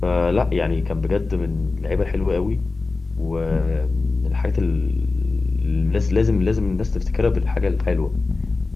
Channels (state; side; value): quieter; right; 3.7 dB